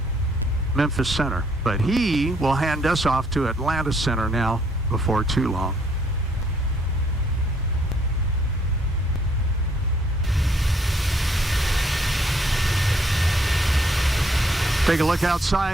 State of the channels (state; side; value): normal; both; correlation 0.68